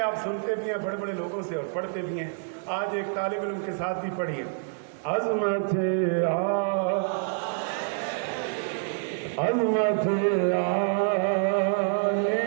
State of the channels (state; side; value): silent; left; 60 dB below the other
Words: آپ سنتے بھی ہیں بڑے بڑے لوگوں سے اور پڑھتے بھی ہیں. آج ایک طالب علم کے ساتھ بھی پڑھیے. عظمت